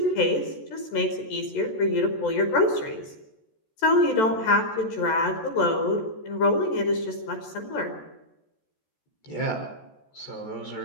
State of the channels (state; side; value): late; right; 14 ms